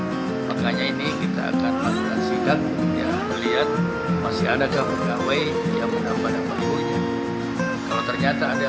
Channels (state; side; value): identical; both; correlation 1.00